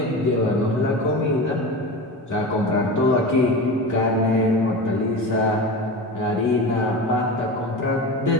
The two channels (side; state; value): both; normal; correlation 0.27